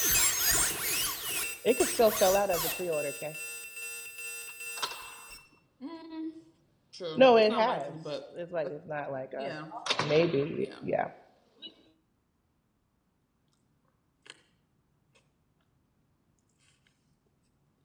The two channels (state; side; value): identical; both; correlation 1.00